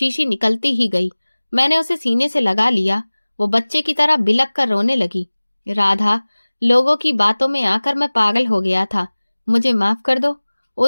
निकलती ही गई। मैंने उसे सीने से लगा लिया। वो बच्चे की तरह बिलक कर रोने लगी। राधा, लोगों की बातों में आकर मैं पागल हो गया था, मुझे माफ कर दो।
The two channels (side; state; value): both; inverted; correlation -1.00